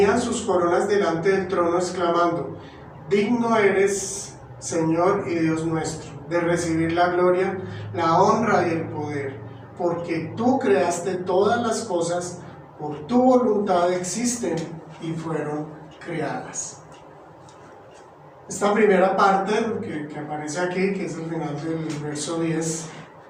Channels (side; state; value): both; identical; correlation 1.00